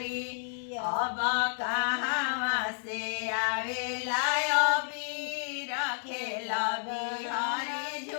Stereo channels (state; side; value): silent; right; 57 dB below the other